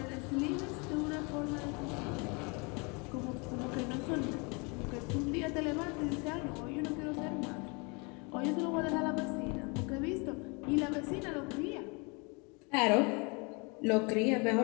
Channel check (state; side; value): quieter; right; 30.8 dB